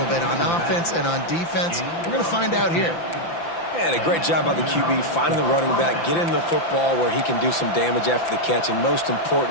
bit on offense and on defense. We're going to find out here. And a great job by the QB, finding the running back, getting the football where he can do some damage after the catch, and most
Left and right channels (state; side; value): late; right; 5.9 ms